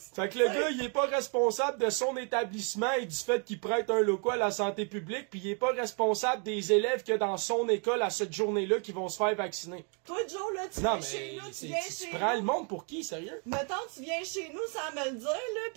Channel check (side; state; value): left; quieter; 38.9 dB